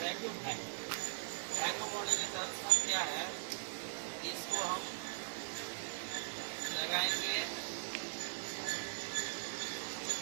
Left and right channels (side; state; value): left; silent; 51 dB below the other